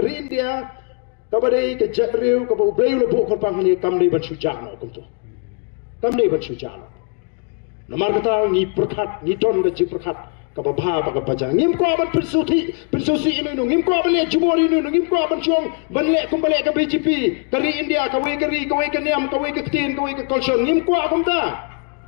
India kabadai ke jatriu ke bau beu lebu korpang ni kamli ban sujana kuntu kamli ban sujana namar kata ni perkat ni don ke perkat kababha ba kabajang ngim ko ban persuti ini ngim ko ban le jumori ini ngim ko ban chuang ban le kum bale ke BJP kari India kawai ke niam kawai ke tin kawai ke kolson ngim ko akumta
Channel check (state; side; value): quieter; right; 39.2 dB